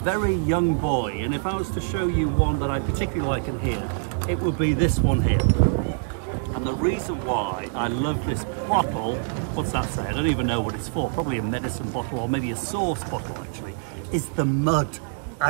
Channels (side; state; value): left; silent; digital silence